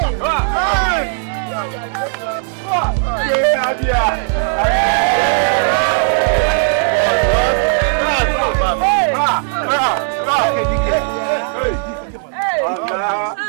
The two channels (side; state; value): left; silent; 69 dB below the other